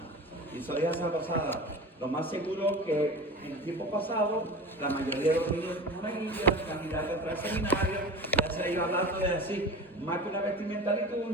Y eso ya se ha pasado. Lo más seguro que en el tiempo pasado, la mayoría de los niños monaguillos, candidatos para el seminario, ya se iba hablando de así, más que una vestimenta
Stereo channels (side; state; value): both; normal; correlation 0.33